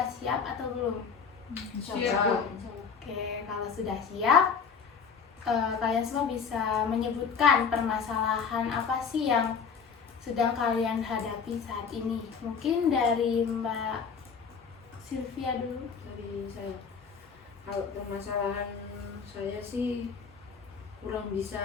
siap atau belum? Siap. Oke, kalau sudah siap, kalian semua bisa menyebutkan permasalahan apa sih yang sedang kalian hadapi saat ini. Mungkin dari Mbak Sylvia dulu. Dari saya. Kalau permasalahan saya sih kurang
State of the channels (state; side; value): quieter; right; 6.0 dB